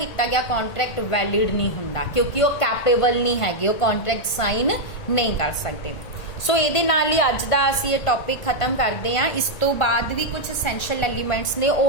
ਗਿਆ ਕੰਟਰੈਕਟ ਵੈਲਿਡ ਨਹੀਂ ਹੁੰਦਾ ਕਿਉਂਕਿ ਉਹ ਕੈਪੇਬਲ ਨਹੀਂ ਹੈਗੇ, ਉਹ ਕੰਟਰੈਕਟ ਸਾਈਨ ਨਹੀਂ ਕਰ ਸਕਦੇ। ਸੋ ਇਹਦੇ ਨਾਲ ਹੀ ਅੱਜ ਦਾ ਅਸੀਂ ਇਹ ਟੌਪਿਕ ਖਤਮ ਕਰਦੇ ਹਾਂ। ਇਸ ਤੋਂ ਬਾਅਦ ਵੀ ਕੁਝ ਐਸੈਂਸ਼ੀਅਲ ਐਲੀਮੈਂਟਸ ਨੇ,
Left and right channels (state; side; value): late; right; 1.5 ms